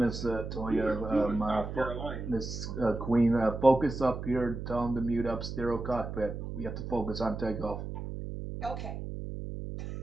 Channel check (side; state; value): right; noise; hum, 7 dB below the sound